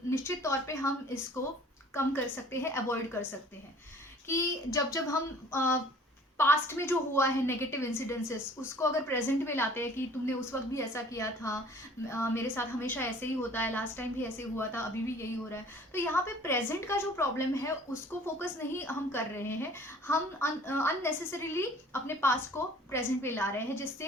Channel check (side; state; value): both; normal; correlation 0.51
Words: निश्चित तौर पे हम इसको कम कर सकते हैं, अवॉइड कर सकते हैं। कि जब जब हम पास्ट में जो हुआ है नेगेटिव इंसिडेंसेस, उसको अगर प्रेजेंट में लाते हैं कि तुमने उस वक्त भी ऐसा किया था, मेरे साथ हमेशा ऐसे ही होता है, लास्ट टाइम भी ऐसे हुआ था, अभी भी यही हो रहा है। तो यहाँ पे प्रेजेंट का जो प्रॉब्लम है उसको फोकस नहीं हम कर रहे हैं, हम अननेसेसरीली अपने पास्ट को प्रेजेंट में ला रहे हैं,